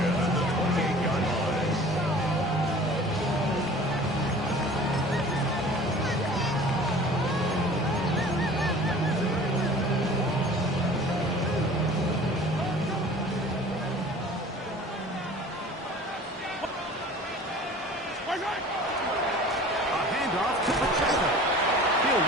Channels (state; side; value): normal; both; correlation 0.45